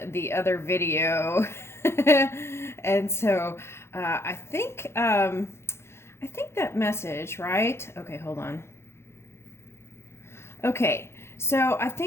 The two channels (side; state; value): right; late; 0.12 ms